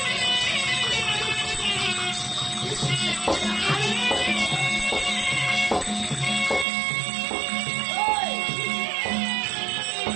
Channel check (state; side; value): drops out; left; at 6.7 s